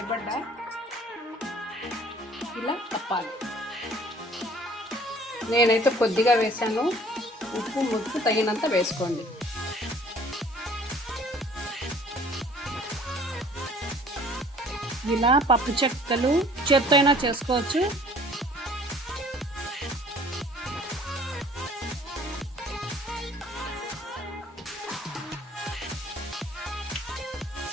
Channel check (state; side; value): normal; both; correlation 0.53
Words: ఇలా తప్పాలి. నేనైతే కొద్దిగా వేసాను. ఉప్పు తగినంత వేసుకోండి. ఇలా పప్పు చెక్కలు చేత్తో అయినా చేసుకోవచ్చు.